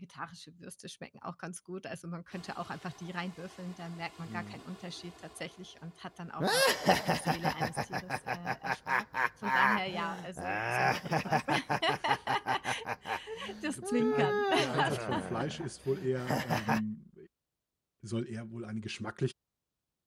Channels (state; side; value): identical; both; correlation 1.00